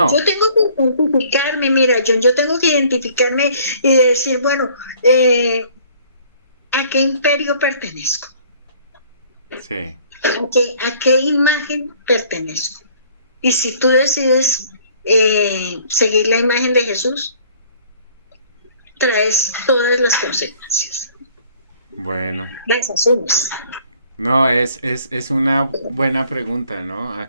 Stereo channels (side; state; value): both; inverted; correlation -0.56